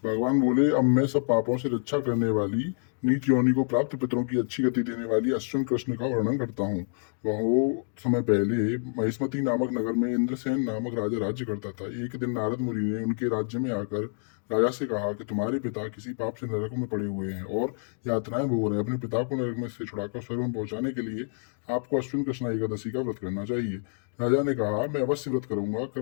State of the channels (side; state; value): right; silent; digital silence